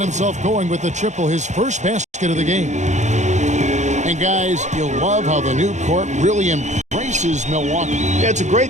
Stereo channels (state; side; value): late; left; 0.34 ms